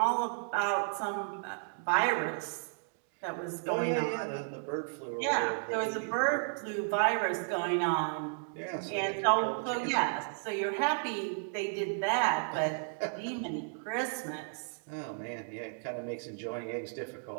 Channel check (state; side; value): silent; left; digital silence